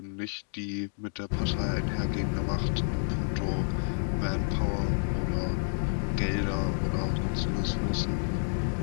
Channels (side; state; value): right; silent; digital silence